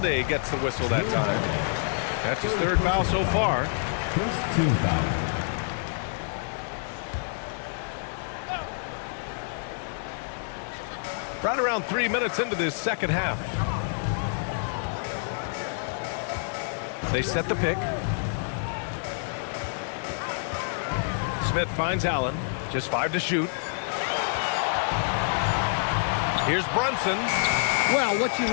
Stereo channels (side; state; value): right; silent; 56 dB below the other